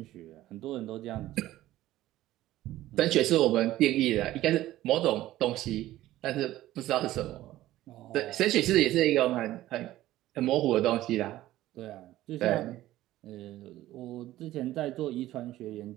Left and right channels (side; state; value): left; quieter; 15.1 dB